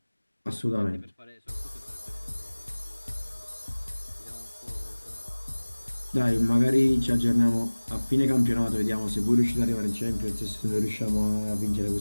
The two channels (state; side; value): inverted; both; correlation -1.00